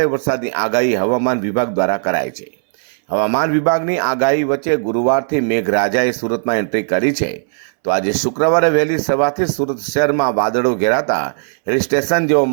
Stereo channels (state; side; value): silent; left; 68 dB below the other